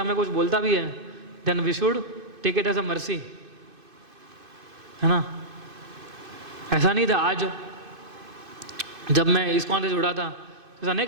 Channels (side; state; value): left; late; 2.5 ms